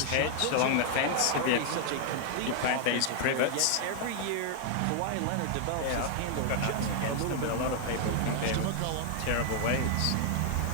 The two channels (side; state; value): both; different; correlation 0.00